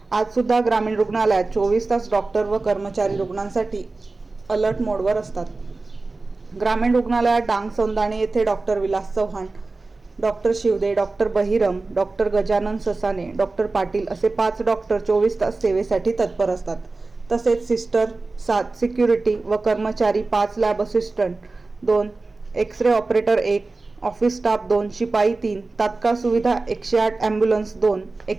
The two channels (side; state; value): left; quieter; 3.5 dB